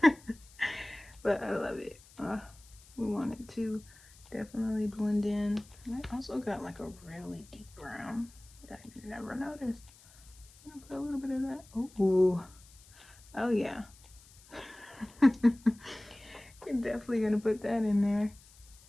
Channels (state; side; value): noise; left; hiss, 24 dB below the sound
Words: But I love it. We want it to definitely blend in. And I also got like a really deep brown that I never noticed. I'm gonna put a little bit of that. Ooh. Oh yeah. You're definitely gonna put that in there.